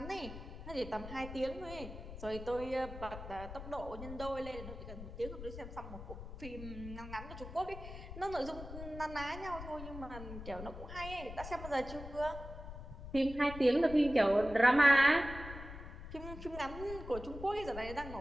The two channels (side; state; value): left; noise; rumble, 11 dB below the sound